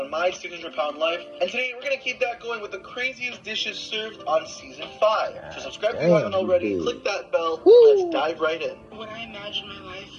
My 600-Pound Life, and today we're going to keep that going with the craziest dishes served on Season 5. So subscribe if you haven't already, click that bell, let's dive right in. When I imagined my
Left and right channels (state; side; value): identical; both; correlation 1.00